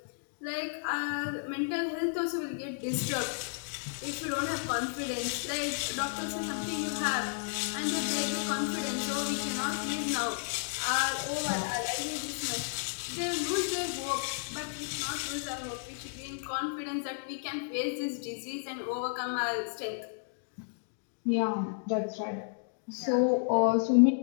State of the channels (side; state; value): right; silent; digital silence